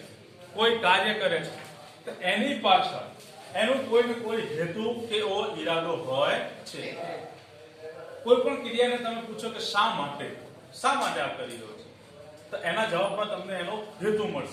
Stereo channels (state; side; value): identical; both; correlation 1.00